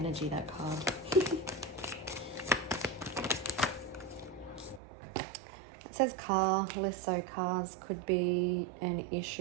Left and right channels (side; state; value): left; drops out; at 4.8 s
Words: that card. It says car, less so cars could be an